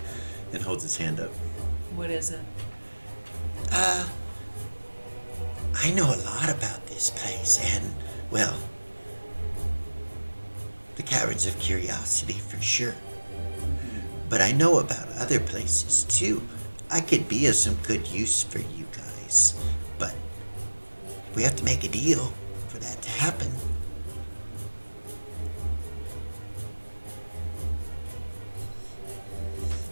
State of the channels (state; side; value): inverted; both; correlation -1.00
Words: and holds his hand up. What is it? I know a lot about this place and, well, the Caverns of Curiosity for sure. But I know about other places too. I could be of some good use for you guys, but we have to make a deal for that to happen.